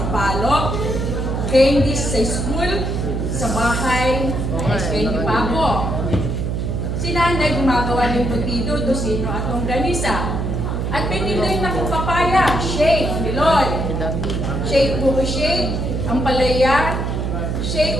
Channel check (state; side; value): noise; right; hum, 1 dB below the sound